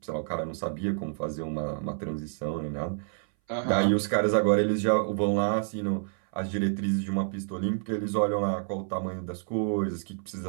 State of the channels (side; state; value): left; silent; 58 dB below the other